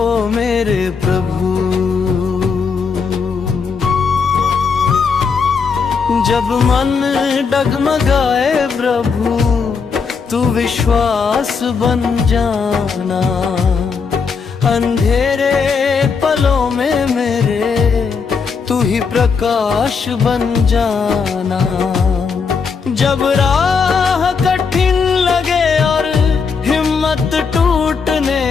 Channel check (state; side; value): quieter; right; 5.5 dB